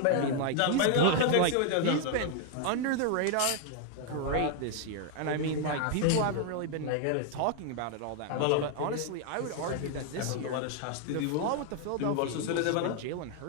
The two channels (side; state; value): both; different; correlation 0.00